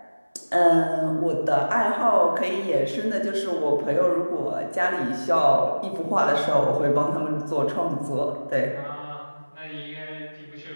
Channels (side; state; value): both; inverted; correlation -1.00